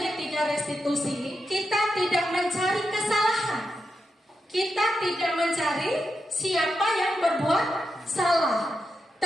restitusi, kita tidak mencari kesalahan. Kita tidak mencari siapa yang berbuat salah.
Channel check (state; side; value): normal; both; correlation 0.87